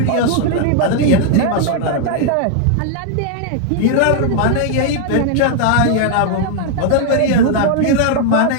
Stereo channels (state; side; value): different; both; correlation 0.00